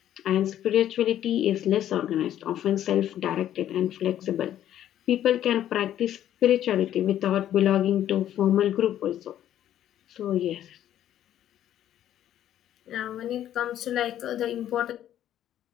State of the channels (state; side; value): quieter; right; 11.5 dB